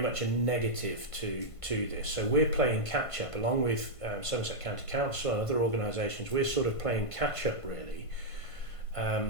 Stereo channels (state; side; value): late; right; 1.5 ms